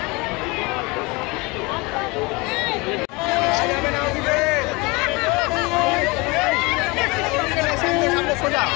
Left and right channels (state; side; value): quieter; right; 25.8 dB